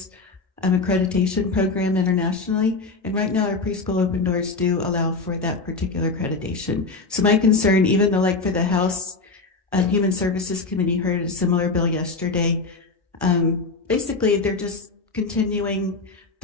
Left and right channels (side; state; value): right; quieter; 3.8 dB